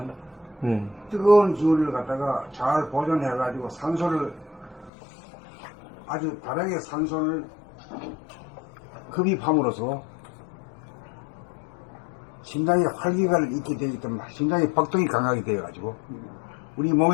네, 뜨거운 기운을 갖다가 잘 보존해 가지고 산소를 아주 다르게 산소를 흡입함으로써 심장에 활기가 있게 되기 때문에 심장의 박동이 강하게 되어가지고 우리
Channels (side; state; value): right; drops out; at 4.9 s